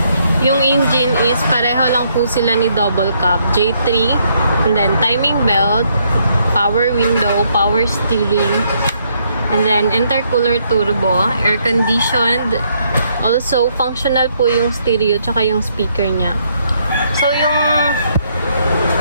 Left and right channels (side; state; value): both; inverted; correlation -0.72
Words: Yung engine is pareho lang po sila ni double cab, J3. And then timing belt, power window, power steering. And then intercooler turbo, air conditioned. Also, functional po yung stereo tsaka yung speaker niya. So,